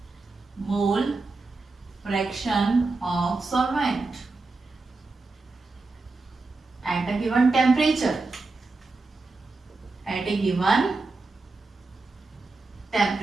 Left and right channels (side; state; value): left; quieter; 3.6 dB